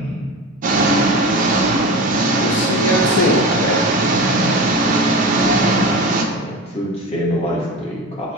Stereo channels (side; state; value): both; normal; correlation 0.28